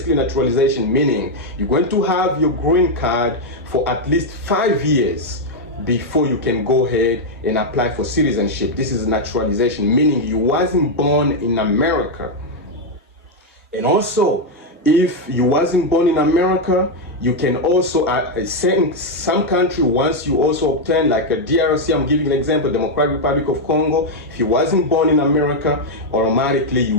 naturalization meaning you're going to have your green card for at least 5 years before you can go ahead and apply for citizenship. This is naturalization, meaning you wasn't born in America. And also, if you wasn't born in America, you can also, some country, once you also obtain, like a DRC, I'm giving an example, Democratic Republic of Congo, if you wasn't born in America, automatically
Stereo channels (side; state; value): both; normal; correlation 0.01